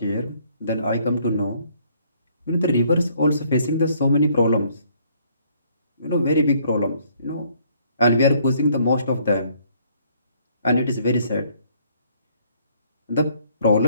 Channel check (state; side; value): inverted; both; correlation -0.65